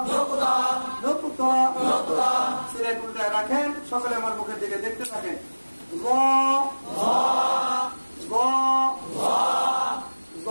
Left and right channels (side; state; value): both; inverted; correlation -1.00